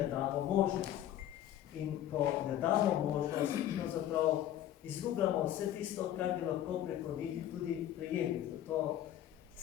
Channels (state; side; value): quieter; right; 11.9 dB